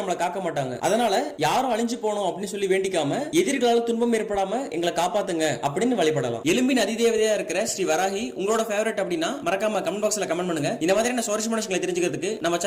காக்க மாட்டாங்க. அதனால யாரும் அழிஞ்சு போகணும் அப்படின்னு சொல்லி வேண்டிக்காம எதிரிகளால் துன்பம் ஏற்படாம எங்களை காப்பாத்துங்க அப்படின்னு வழிபடலாம். எலும்பின் அதிதேவதையா இருக்கிற ஸ்ரீ வராகி உங்களோட ஃபேவரட் அப்படின்னா மறக்காம கமெண்ட் பாக்ஸ்ல கமெண்ட் பண்ணுங்க. இந்த மாதிரியான சுவாரஸ்யமான விஷயங்களை தெரிஞ்சுக்கிறதுக்கு நம்ம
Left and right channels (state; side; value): identical; both; correlation 1.00